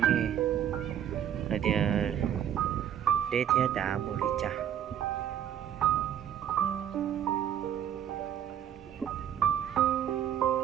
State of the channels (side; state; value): left; quieter; 9.9 dB